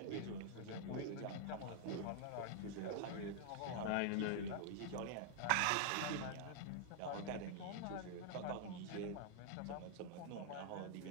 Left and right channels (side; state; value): both; different; correlation -0.01